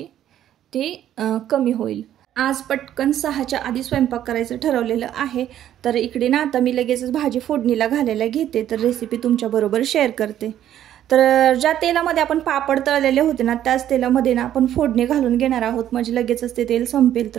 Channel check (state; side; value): quieter; left; 11.4 dB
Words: ती कमी होईल. आज पटकन 6च्या आधी स्वयंपाक करायचं ठरवलेलं आहे. तर इकडे ना आता मी लगेचच भाजी फोडणीला घालायला घेते, तर रेसिपी तुमच्याबरोबर शेअर करते. तर ज्या तेलामध्ये आपण पापड तळलेले होते ना त्याच तेलामध्ये ना आपण फोडणी घालून घेणार आहोत, म्हणजे लगेचच ते तेल संपेल.